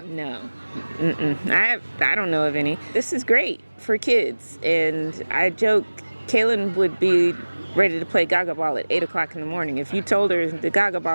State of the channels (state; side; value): inverted; both; correlation -1.00